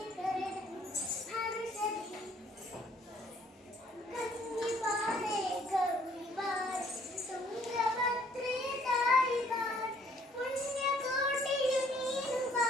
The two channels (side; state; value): both; normal; correlation 0.62